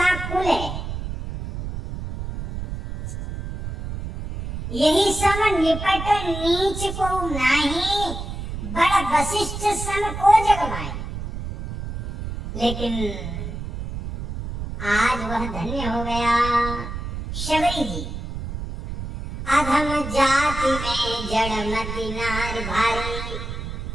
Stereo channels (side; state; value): right; noise; rumble, 7 dB below the sound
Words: कुल है। यही सम निपट नीच को नाही, बड़ वशिष्ठ सन को जगमाई। लेकिन आज वह धन्य हो गया शबरी जी। अधम जाति में जड़मति नार भारी,